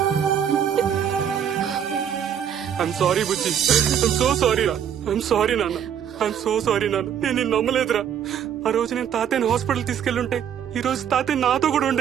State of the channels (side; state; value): left; quieter; 8.9 dB